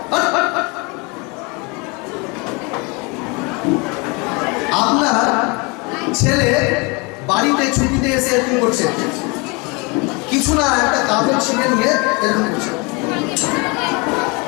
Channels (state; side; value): quieter; right; 28.8 dB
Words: আপনার ছেলে বাড়িতে ছুটিতে এসে এরকম করছে, কিছু না একটা কাপড় ছিঁড়ে নিয়ে এরকম করছে।